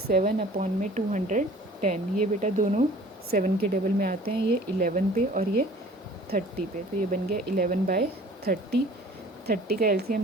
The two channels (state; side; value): normal; both; correlation 0.49